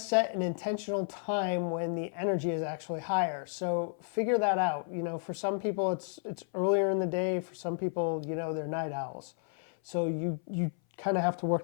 an intentional time when the energy is actually higher. So figure that out. For some people it's earlier in the day. For some people, they're night owls. So you kind of have to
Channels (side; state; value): right; silent; 56 dB below the other